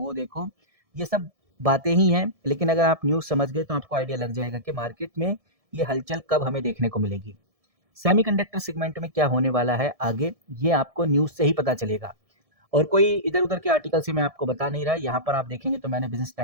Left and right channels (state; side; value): late; left; 1.7 ms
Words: देखो, ये सब बातें ही हैं। लेकिन अगर आप न्यूज़ समझ गए तो आपको आइडिया लग जाएगा कि मार्केट में ये हलचल कब हमें देखने को मिलेगी। सेमीकंडक्टर सेगमेंट में क्या होने वाला है आगे, ये आपको न्यूज़ से ही पता चलेगा। और कोई इधर-उधर के आर्टिकल से मैं आपको बता नहीं रहा। यहाँ पर आप देखेंगे तो मैंने बिज़नेस